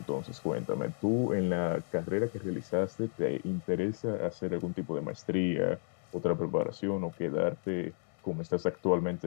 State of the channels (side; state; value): right; silent; 56 dB below the other